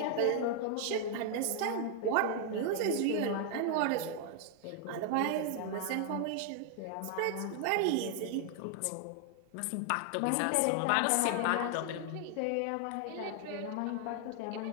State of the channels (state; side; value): different; both; correlation 0.00